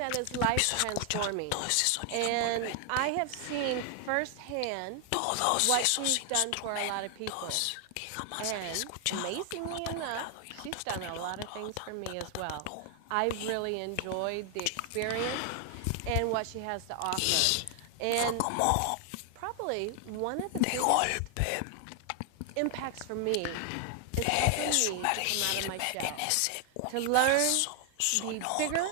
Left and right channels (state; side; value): different; both; correlation 0.00